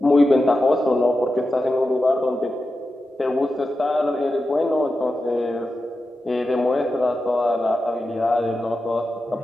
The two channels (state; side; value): normal; both; correlation 0.91